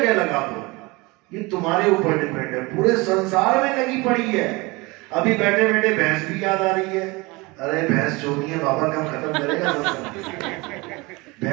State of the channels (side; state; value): left; quieter; 24.4 dB